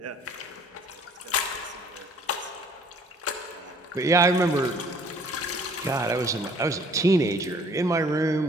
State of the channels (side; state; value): both; normal; correlation 0.56